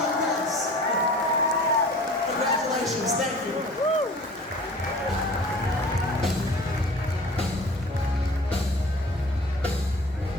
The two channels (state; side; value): normal; both; correlation 0.44